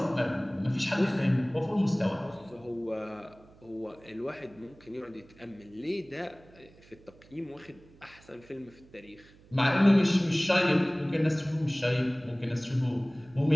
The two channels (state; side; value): noise; right; hum, 25 dB below the sound